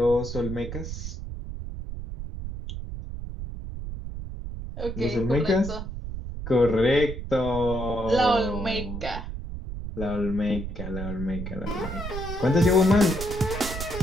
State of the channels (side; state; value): right; noise; rumble, 7 dB below the sound